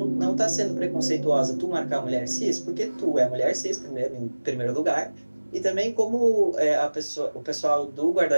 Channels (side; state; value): both; inverted; correlation -1.00